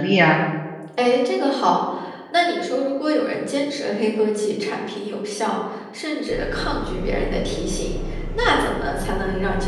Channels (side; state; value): both; identical; correlation 1.00